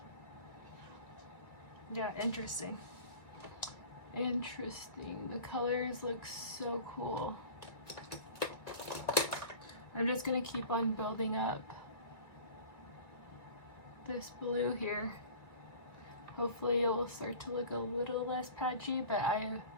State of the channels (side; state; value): right; late; 1.8 ms